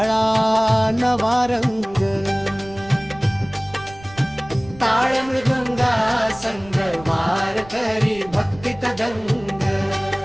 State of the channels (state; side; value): noise; right; rumble, 20 dB below the sound